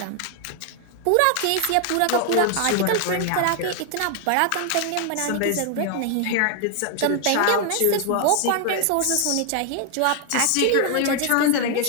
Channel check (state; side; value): different; both; correlation 0.00